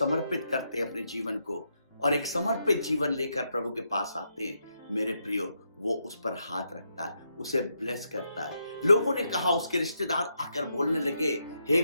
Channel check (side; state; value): both; inverted; correlation -0.81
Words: करते हैं अपने जीवन को, और एक समर्पित जीवन लेकर प्रभु के पास आते हैं, मेरे प्रियो, वो उस पर हाथ रखता है, उसे ब्लेस करता है। लोगों ने कहा, उसके रिश्तेदार आकर बोलने लगे, हे